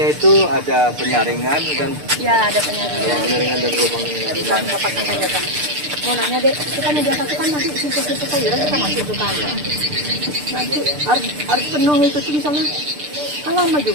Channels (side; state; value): left; late; 6.7 ms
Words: itu ada penyaringan dan Ya, ada penyaringan. penyaringan dan lubang dan Mau nanya deh, kita media satu kan nanti situ-situ sayuran kita masuk ke kan. Nanti harus penuh itu tuh misalnya. Kan lama